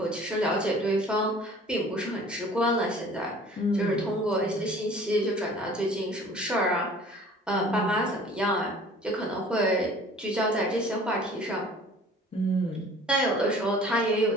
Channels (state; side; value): normal; both; correlation 0.49